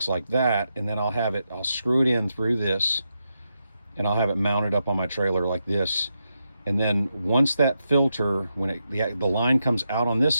like that, and then I'll screw it in through this, and I'll have it mounted up on my trailer like this. And then once that filter, when the line comes out on this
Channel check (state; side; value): inverted; both; correlation -0.85